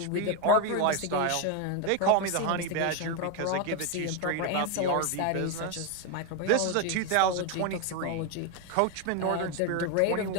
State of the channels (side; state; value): both; different; correlation 0.01